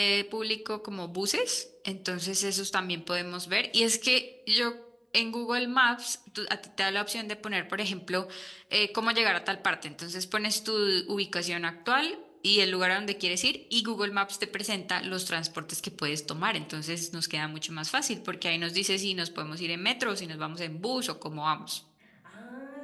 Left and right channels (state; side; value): identical; both; correlation 1.00